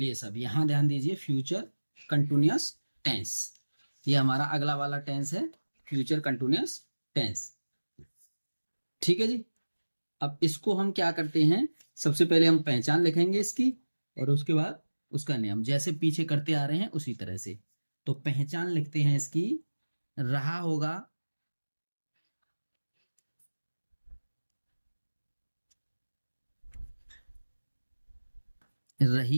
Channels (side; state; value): both; inverted; correlation -1.00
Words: सब यहां ध्यान दीजिए, फ्यूचर कंटिन्यूअस टेंस, ये हमारा अगला वाला टेंस है, फ्यूचर कंटिन्यूअस टेंस। ठीक है जी। अब इसको हम क्या करते हैं, सबसे पहले हम पहचान लिखेंगे इसकी, और उसके बाद उसका नियम, जैसे पीछे करते आ रहे हैं उसी तरह से। तो पहचान लिखते हैं इसकी, रहा होगा,